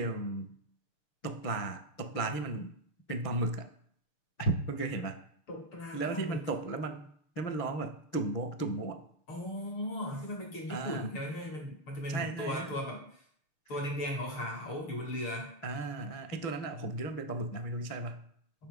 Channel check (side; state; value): right; late; 6.6 ms